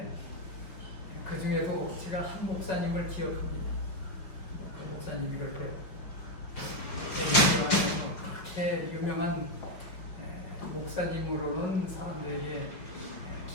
그 중에도 제가 한 목사님을 기억합니다. 그 목사님이 그렇게 재림교회에서 그렇게 유명한 목사님으로는 사람들에게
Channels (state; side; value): late; right; 5.4 ms